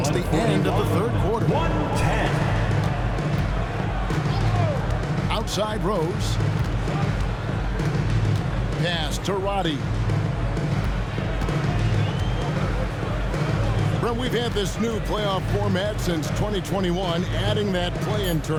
the end of the third quarter. 110. Outside Rose. Pass to Roddy. Well, we've had this new playoff format since 2021, adding that play-in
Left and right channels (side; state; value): both; identical; correlation 1.00